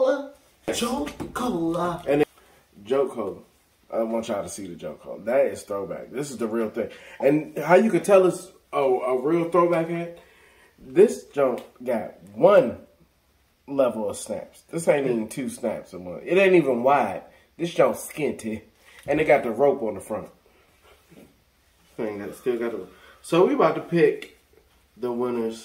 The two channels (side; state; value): both; identical; correlation 1.00